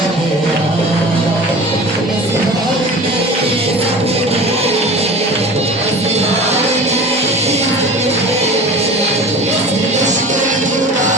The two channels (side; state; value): both; normal; correlation 0.37